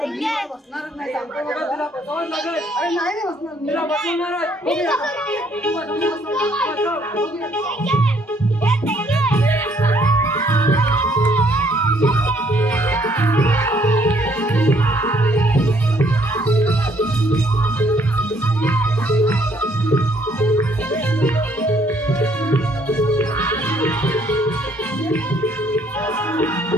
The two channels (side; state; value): both; normal; correlation 0.66